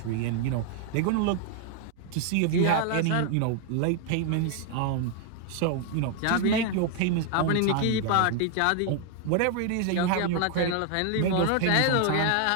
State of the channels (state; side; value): different; both; correlation 0.00